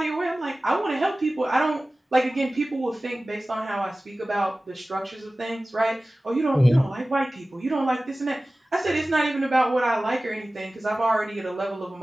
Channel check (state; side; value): normal; both; correlation 0.97